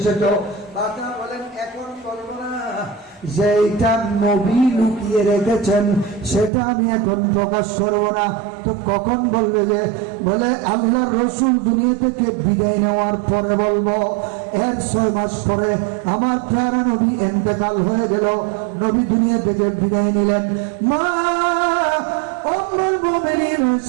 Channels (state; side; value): drops out; left; at 6.5 s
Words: ফাতেমা বলেন, এখন বলবো না, যে এটা নবী লুকিয়ে রেখেছেন সেটা আমি এখন প্রকাশ করবো না, তো কখন বলবে? যে বলে আল্লাহর রসুল দুনিয়া থেকে বিদায় নেওয়ার পরে বলবো। এর 6 মাস পরে আমার প্যারা নবী ইন্তেকাল হয়ে গেল, নবী দুনিয়া থেকে বিদায় নিলেন। মা উম্মুল মুমিনিন